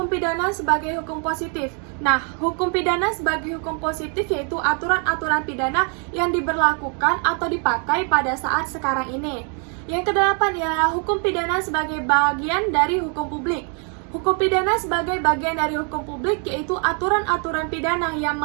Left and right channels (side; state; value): left; quieter; 39.4 dB